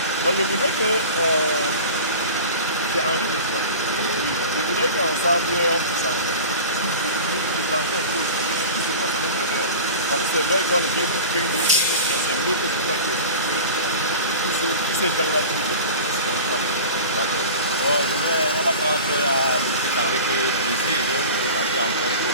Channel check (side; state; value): both; inverted; correlation -0.35